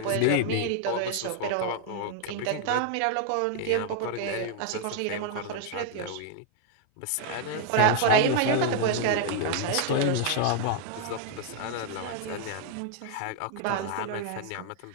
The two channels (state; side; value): different; both; correlation 0.00